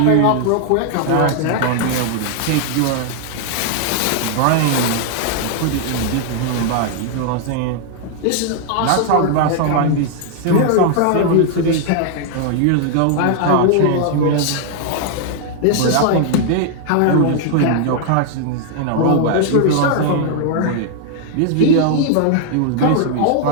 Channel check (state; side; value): different; both; correlation 0.00